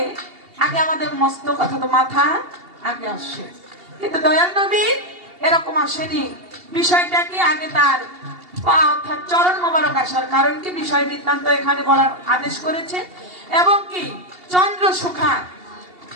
আগে আমাদের মস্তক অর্থাৎ মাথা আগে আসে, কিন্তু দয়াল নবী এরকম আসেনি। বিষয়টা কি আগে তার পা অর্থাৎ চরণ মোবারক আসার কারণ কি বিষয় বৃত্তান্ত এখানে বলার আদেশ করেছে। এবং কি চন্দ্র সুখা,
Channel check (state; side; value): late; left; 2.8 ms